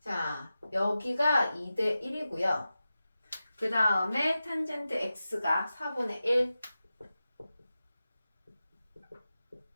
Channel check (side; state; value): both; inverted; correlation -0.93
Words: 자, 여기가 2대 1이고요. 그 다음에 탄젠트 x가 4분의 1.